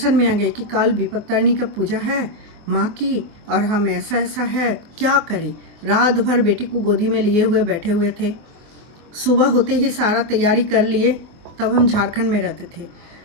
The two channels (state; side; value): late; left; 24 ms